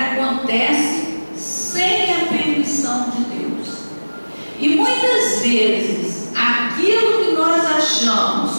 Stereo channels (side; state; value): both; inverted; correlation -1.00